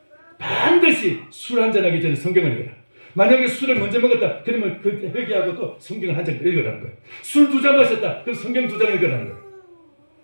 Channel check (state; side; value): inverted; both; correlation -1.00